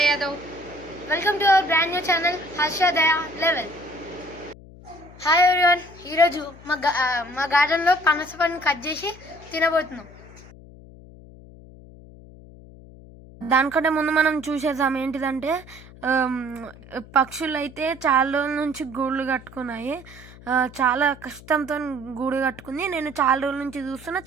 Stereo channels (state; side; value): noise; left; hum, 20 dB below the sound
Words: Yadav. Welcome to our brand new channel, Harsha Daya Level. Hi everyone, ఈరోజు మా గార్డెన్లో పనస పండుని కట్ చేసి తినబోతున్నాం. దానికంటే ముందు మనం చూసేద్దాం ఏంటిదంటే, పక్షులు అయితే చాలా రోజుల నుంచి గూళ్ళు కట్టుకున్నాయి. చాలా కష్టంతో గూడు కట్టుకుంది. నేను చాలా రోజుల నుంచి చూస్తున్నా,